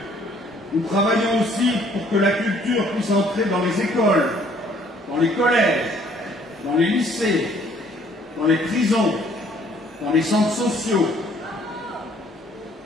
Nous travaillons aussi pour que la culture puisse entrer dans les écoles, dans les collèges, dans les lycées, dans les prisons, dans les centres sociaux.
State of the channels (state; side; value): normal; both; correlation 0.60